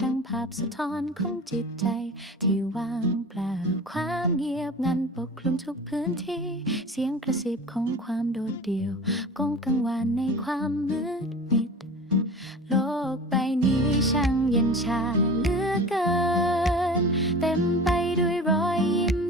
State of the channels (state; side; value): normal; both; correlation 0.37